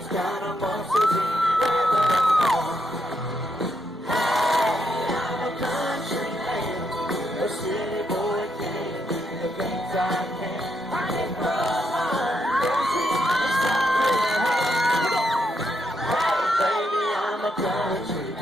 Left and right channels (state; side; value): normal; both; correlation 0.79